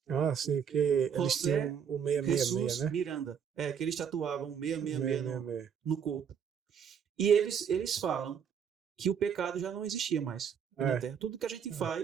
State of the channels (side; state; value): left; quieter; 7.6 dB